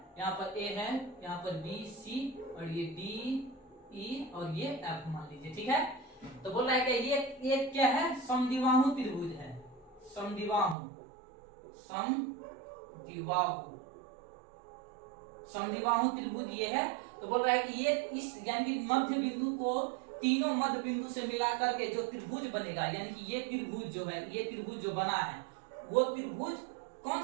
यहाँ पर ए है, यहाँ पर बी सी और ये डी ई और ये एफ मान लीजिए, ठीक है। तो बोल रहा है कि ये क्या है, समद्विबाहु त्रिभुज है, समद्विबाहु त्रिभुज ये है। तो बोल रहा है कि ये इस यानी कि मध्य बिंदु को तीनों मध्य बिंदु से मिलाकर के जो त्रिभुज बनेगा, यानी कि ये त्रिभुज जो है, ये त्रिभुज जो बना है, वो त्रिभुज कौन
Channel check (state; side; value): drops out; left; at 10.8 s